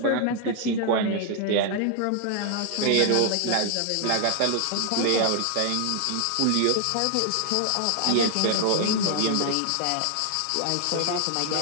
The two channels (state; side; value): different; both; correlation 0.00